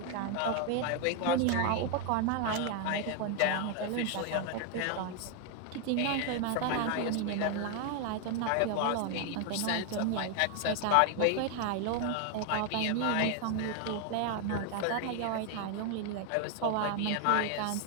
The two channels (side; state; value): both; different; correlation 0.01